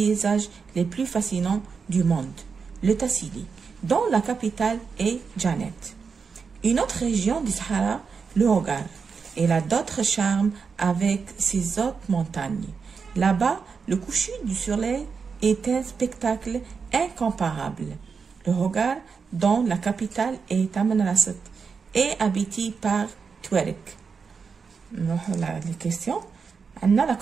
les plus fascinants du monde, le Tassili, dont la capitale est Janet. Une autre région du Sahara, le Hogar, elle a d'autres charmes avec ses hautes montagnes. Là-bas, le coucher du soleil est un spectacle incomparable. Le Hogar, dont la capitale est Tamanrasset, est habité par Touareg. Les questions. On a la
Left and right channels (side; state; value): left; quieter; 5.5 dB